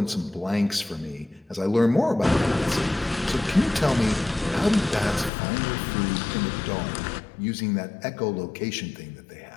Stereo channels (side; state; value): right; drops out; at 5.3 s